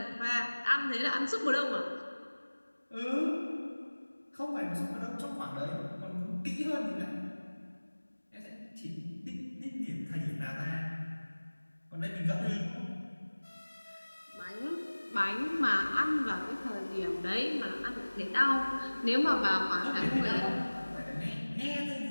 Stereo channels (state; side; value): inverted; both; correlation -1.00